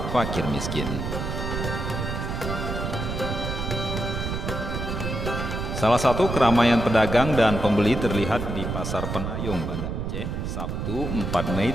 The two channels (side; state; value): right; noise; rumble, 3 dB below the sound